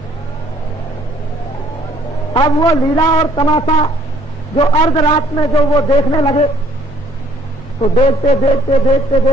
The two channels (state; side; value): normal; both; correlation 0.61